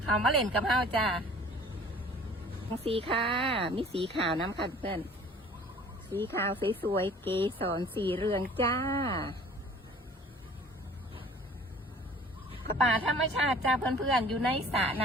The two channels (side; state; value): both; normal; correlation 0.49